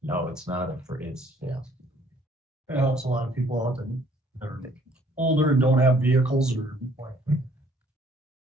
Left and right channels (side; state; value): both; normal; correlation 0.61